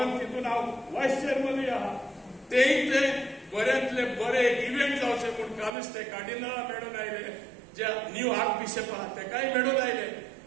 तितून हांव व्हायस चेअरमनूय आहा, तेय ते बऱ्यांतले बरे इव्हेंट जावचे म्हूण कालूच ते कार्डिनला मेळून आयले, जे न्यू आर्क बिशप आहा तेकाय मेळून आयले.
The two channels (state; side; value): drops out; left; at 5.7 s